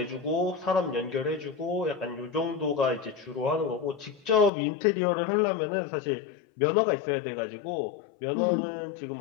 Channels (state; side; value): drops out; right; at 4.5 s